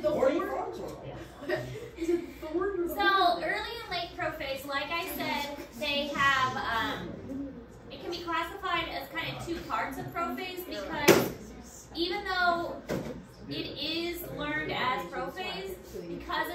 the Horny horn? Frogs or Is it thorn or the So horn? early and late prophase, like I said, they have. It can be classified as kind of two parts of prophase, because even though it is learned as prophase, because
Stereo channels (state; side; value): identical; both; correlation 1.00